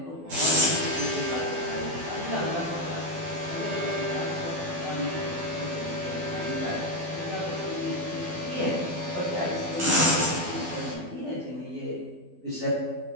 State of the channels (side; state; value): left; late; 12 ms